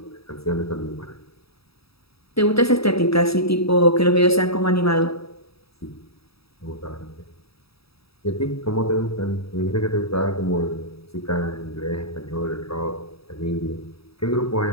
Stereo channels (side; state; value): right; late; 0.77 ms